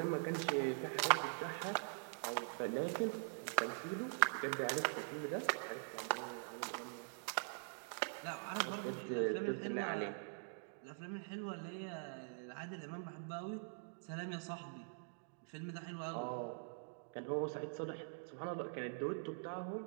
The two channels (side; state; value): left; silent; digital silence